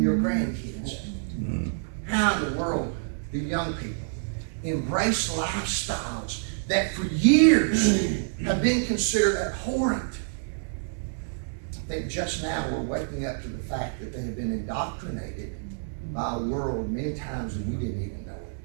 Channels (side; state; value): left; silent; digital silence